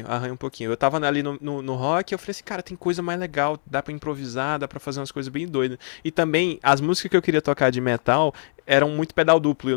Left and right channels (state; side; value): silent; right; digital silence